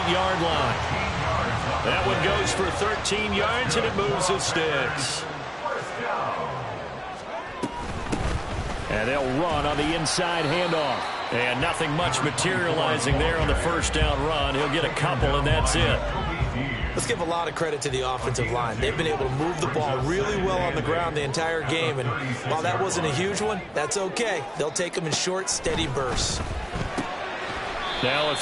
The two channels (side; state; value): both; identical; correlation 1.00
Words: line. That one goes for 13 yards, and it moves his sticks. And they'll run on the inside handoff. And nothing much materializing there on the first down run. He'll get a couple, and that's it. Let's give a lot of credit to the offensive line. They've been able to move the ball really well on the ground the entire game. And while that wasn't a huge one, that's okay. They'll take them in short, steady bursts. Now a